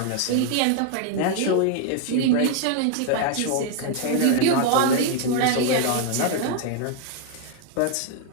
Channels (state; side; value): different; both; correlation 0.00